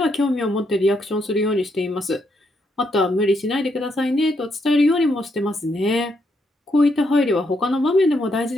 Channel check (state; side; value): normal; both; correlation 0.77